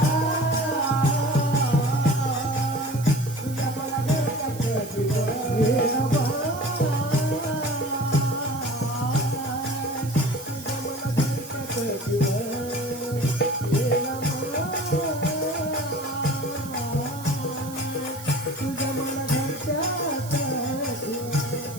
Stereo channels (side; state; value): right; noise; hiss, 15 dB below the sound